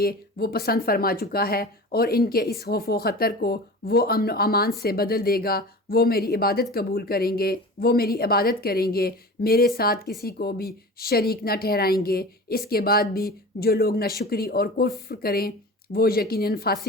وہ پسند فرما چکا ہے، اور ان کے اس خوف و خطر کو وہ امن و امان سے بدل دے گا۔ وہ میری عبادت قبول کریں گے، وہ میری عبادت کریں گے، میرے ساتھ کسی کو بھی شریک نہ ٹھہرائیں گے۔ اس کے بعد بھی جو لوگ ناشکری اور کفر کریں وہ یقیناً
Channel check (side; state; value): both; normal; correlation 0.35